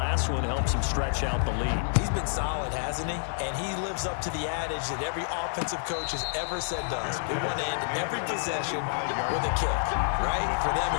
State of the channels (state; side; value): silent; right; digital silence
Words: one helps him stretch out the lead. He's been solid, hasn't he? And he lives up to the adage that every offensive coach has ever said to us. We want to end every possession with a kick, right? For them,